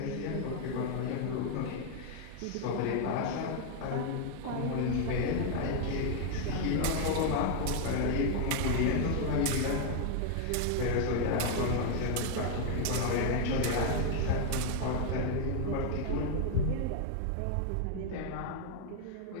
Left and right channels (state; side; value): different; both; correlation 0.00